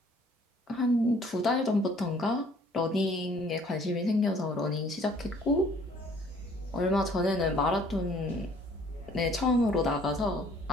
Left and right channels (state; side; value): normal; both; correlation 0.58